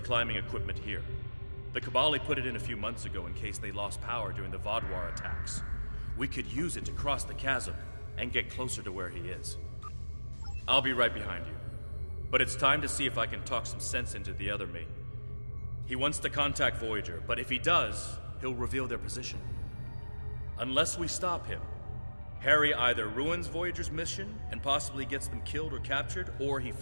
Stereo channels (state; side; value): inverted; both; correlation -1.00